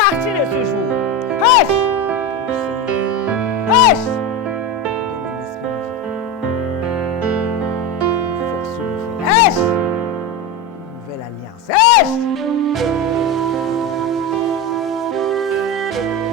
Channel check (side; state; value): both; normal; correlation 0.19